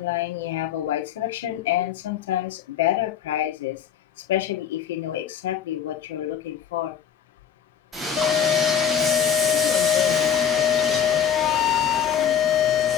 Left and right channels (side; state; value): right; quieter; 8.4 dB